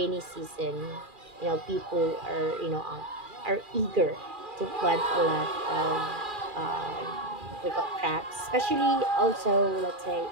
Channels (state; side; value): late; left; 2.4 ms